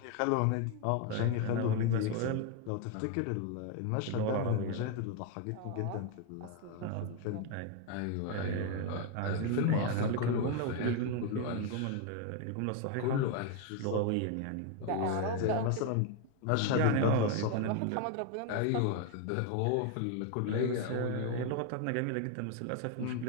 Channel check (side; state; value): both; different; correlation 0.01